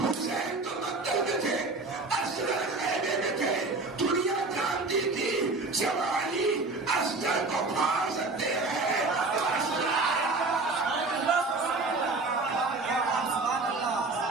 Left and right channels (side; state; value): left; quieter; 3.5 dB